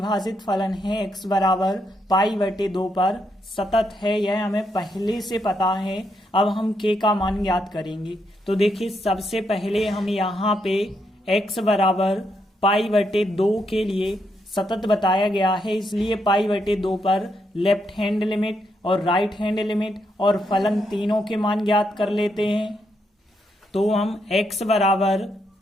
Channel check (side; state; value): both; normal; correlation 0.79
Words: फलन है x बराबर π/2 पर सतत है, यह हमें पहले से पता है। अब हम k का मान ज्ञात करेंगे। तो देखिए, सबसे पहले हम यहाँ पे x बराबर π/2 के लिए सतत बताया गया है, इसलिए π/2 पर लेफ्ट हैंड लिमिट और राइट हैंड लिमिट और फलन तीनों के मान ज्ञात कर लेते हैं। तो हम x बराबर